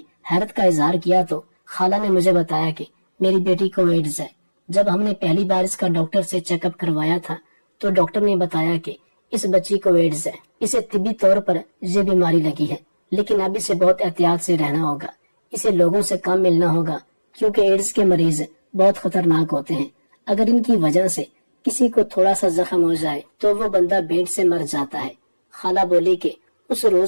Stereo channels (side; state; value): both; inverted; correlation -1.00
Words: حیرت کا اظہار کیا تو خالہ نے مجھے بتایا کہ میری بیٹی کو ایڈز ہے۔ جب ہم نے پہلی بار اس کا ڈاکٹر سے چیک اپ کروایا تھا تو ڈاکٹر نے بتایا کہ اس بچی کو ایڈز ہے، اسے طبی طور پر یہ بیماری لگی ہے، لیکن اب اسے بہت احتیاط سے رہنا ہوگا، اسے لوگوں سے کم ملنا ہوگا کیونکہ ایڈز کے مریض بہت خطرناک ہوتے ہیں۔ اگر ان کی وجہ سے کسی کو تھوڑا سا زخم ہو جائے تو وہ بندہ بینٹ سے مر جاتا ہے۔ خالہ بولی کہ اس